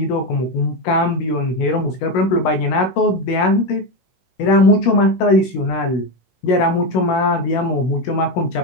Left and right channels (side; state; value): right; late; 16 ms